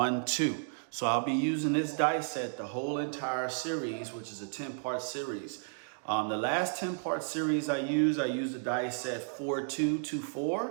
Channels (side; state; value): left; silent; digital silence